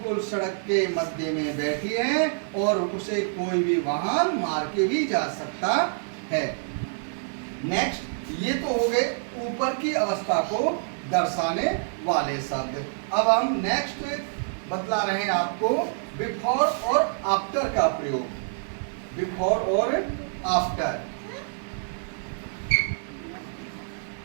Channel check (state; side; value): silent; left; digital silence